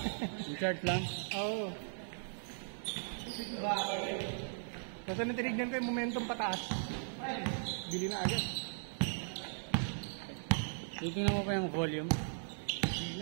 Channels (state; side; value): silent; left; 53 dB below the other